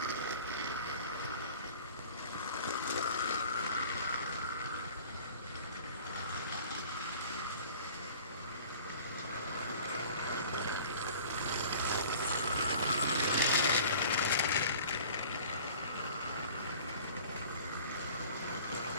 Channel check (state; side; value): inverted; both; correlation -0.46